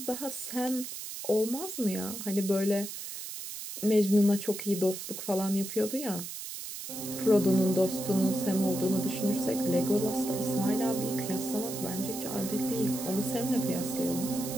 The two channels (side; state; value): right; noise; hiss, 8 dB below the sound